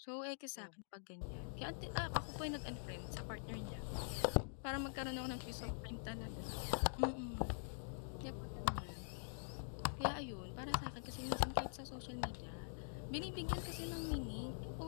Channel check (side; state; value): right; silent; digital silence